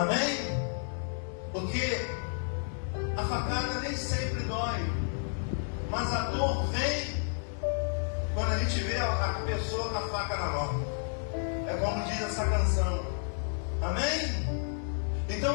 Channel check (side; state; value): right; silent; 57 dB below the other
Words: Porque a facada nem sempre dói, mas a dor vem quando a gente vê a pessoa com a faca na mão. É como diz essa canção. Amém?